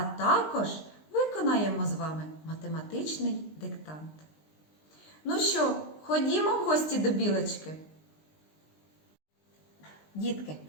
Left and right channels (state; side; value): late; right; 20 ms